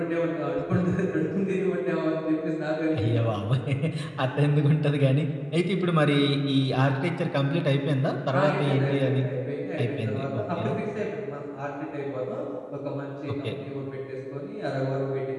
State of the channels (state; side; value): identical; both; correlation 1.00